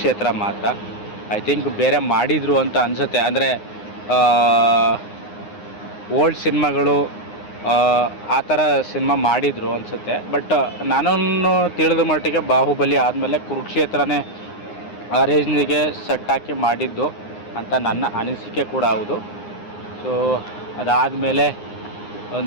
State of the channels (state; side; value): late; right; 9.7 ms